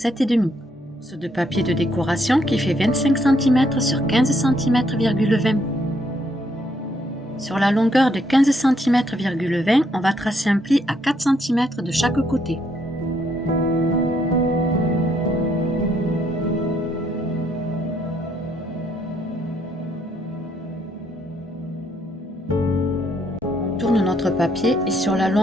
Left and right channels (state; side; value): normal; both; correlation 0.72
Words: ce de papier de décoration qui fait 25 cm sur 15 cm,20. Sur la longueur de 15 cm,20, on va tracer un pli à 4 cm de chaque côté. On tourne notre papier et sur la